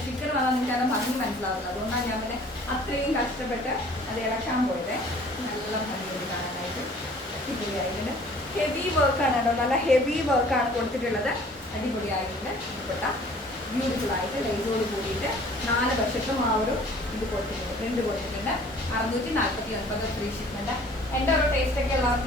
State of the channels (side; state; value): both; normal; correlation 0.52